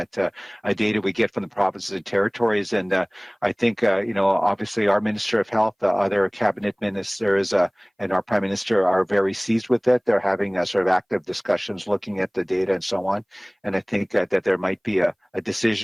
data we get from the provinces and territories. And I think, obviously our Minister of Health, other cabinet ministers, and our Prime Minister are very seized with it. They're having sort of active discussions, looking at the data and so on. And I think that there might be a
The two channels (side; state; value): both; identical; correlation 1.00